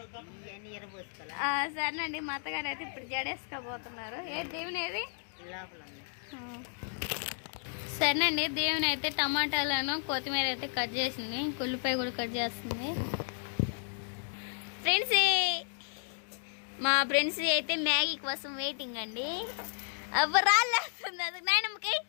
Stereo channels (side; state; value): right; silent; 56 dB below the other